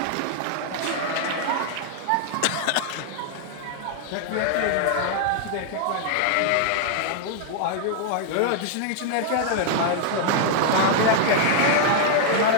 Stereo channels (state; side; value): different; both; correlation 0.00